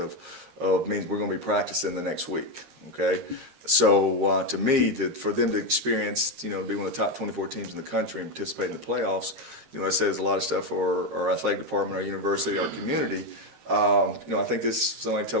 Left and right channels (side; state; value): left; late; 13 ms